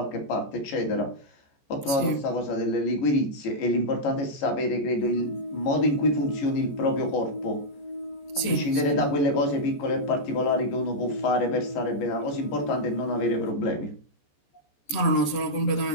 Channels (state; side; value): late; right; 14 ms